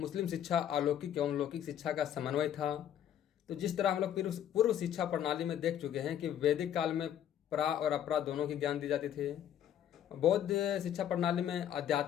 शिक्षा अलौकिक एवं लौकिक शिक्षा का समन्वय था। तो जिस तरह हम लोग पूर्व शिक्षा प्रणाली में देख चुके हैं कि वैदिक काल में प्रा और अपरा दोनों की ज्ञान दी जाती थी। बौद्ध शिक्षा प्रणाली में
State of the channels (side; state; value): right; quieter; 10.3 dB